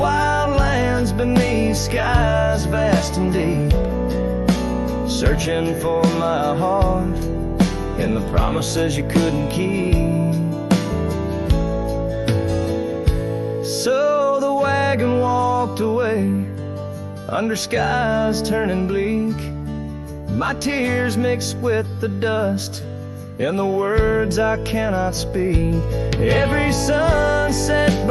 lands beneath skies vast and deep, searching for my heart and the promises you couldn't keep. So the wagon walked away under skies turning bleak. My tears mixed with the dust and the words I cannot speak. Every sunset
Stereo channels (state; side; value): identical; both; correlation 1.00